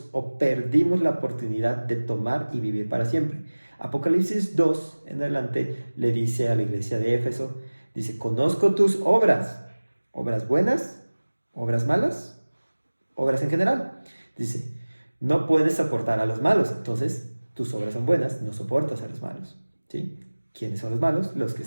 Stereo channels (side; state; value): both; inverted; correlation -1.00